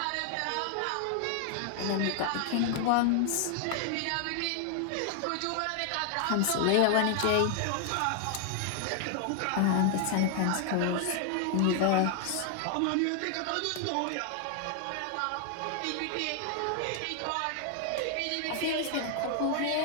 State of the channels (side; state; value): both; different; correlation 0.00